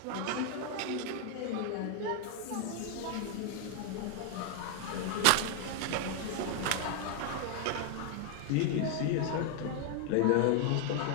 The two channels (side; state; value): both; different; correlation 0.00